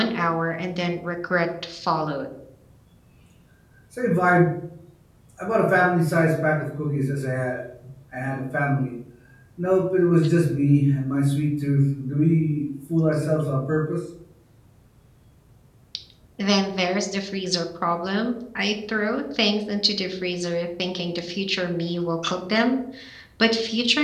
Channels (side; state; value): both; identical; correlation 1.00